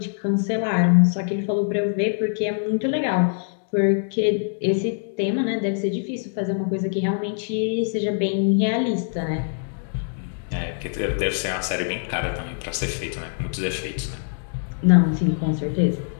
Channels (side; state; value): right; silent; digital silence